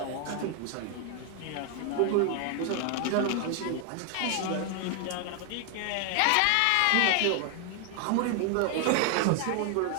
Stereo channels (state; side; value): different; both; correlation 0.00